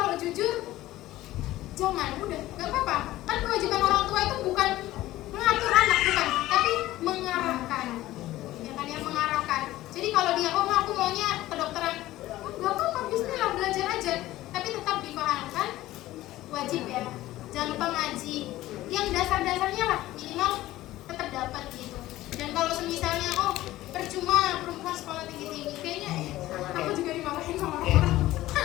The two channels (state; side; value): quieter; right; 16.0 dB